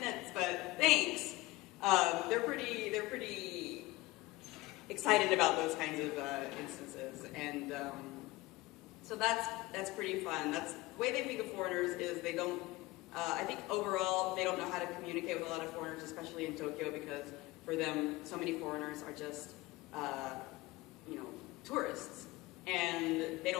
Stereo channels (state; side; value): quieter; right; 20.1 dB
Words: but thanks." They're pretty excited about those kinds of instances, and so that's pretty fun. That's the way they think of foreigners is they don't. I think overall they don't know how to communicate with a lot of foreigners, especially in Tokyo, because for them so many foreigners are just tourists, and they